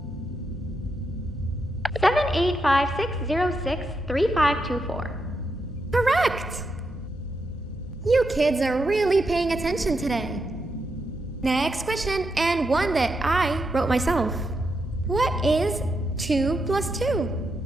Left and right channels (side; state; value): both; normal; correlation 0.83